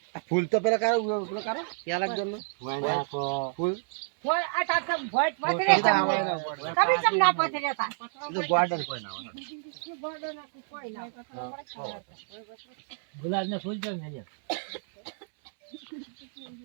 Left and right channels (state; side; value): silent; left; 59 dB below the other